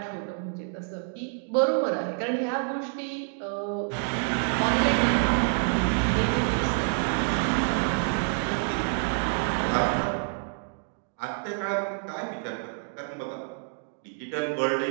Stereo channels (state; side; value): silent; left; 60 dB below the other